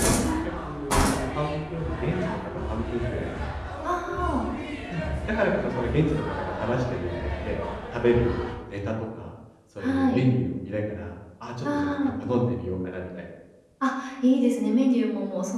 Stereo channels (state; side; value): identical; both; correlation 1.00